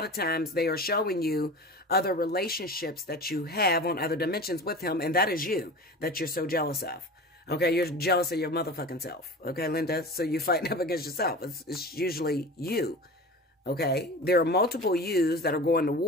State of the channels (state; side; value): normal; both; correlation 0.34